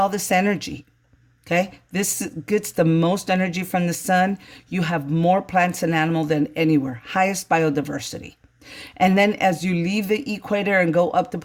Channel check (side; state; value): both; identical; correlation 1.00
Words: this energy. Okay, this gets the most energy from the sun. You have more plants and animal than anywhere, highest biodiversity. And then as you leave the equator and go up the